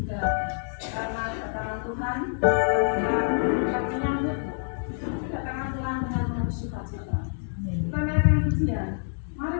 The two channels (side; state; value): right; silent; digital silence